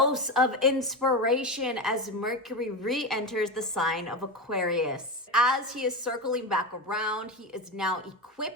of inspiration as Mercury re-enters the sign of Aquarius. As he is circling back around, he is now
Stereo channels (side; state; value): both; normal; correlation 0.19